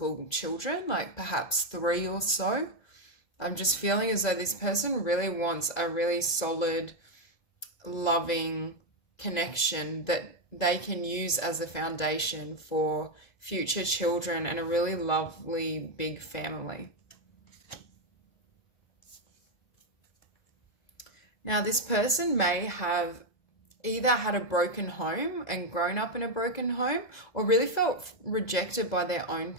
children, like perhaps 3 or so. I'm just feeling as though this person really wants a really solid, loving connection that they can use as a foundation for future children and a really lovely big family. Now, this person may have either had a broken home and grown up in a broken home or really felt rejected by their own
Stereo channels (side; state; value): right; late; 2.0 ms